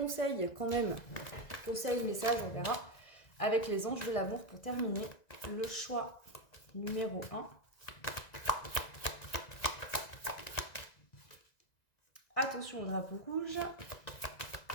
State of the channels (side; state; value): right; late; 1.9 ms